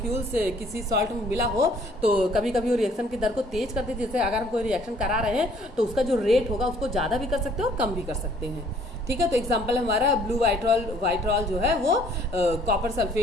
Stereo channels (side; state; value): both; normal; correlation 0.60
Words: किसी सॉल्ट में मिला हो तो कभी कभी वो रिएक्शन की दर को तेज कर देती है। जैसे अगर हम कोई रिएक्शन करा रहे हैं तो उसका जो रेट होगा उसको ज़्यादा भी कर सकते हैं और कम भी कर सकते हैं। ठीक है, तो एग्जांपल हमारा ब्लू वाइट्रॉल जो है वो कॉपर